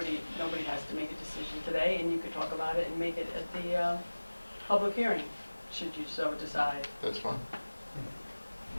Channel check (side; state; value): both; inverted; correlation -1.00